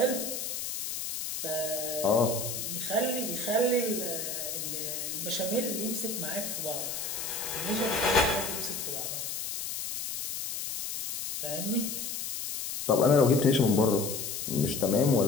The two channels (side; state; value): left; noise; hiss, 4 dB below the sound